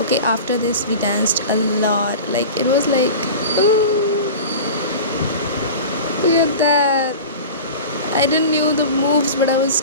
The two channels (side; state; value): both; inverted; correlation -0.34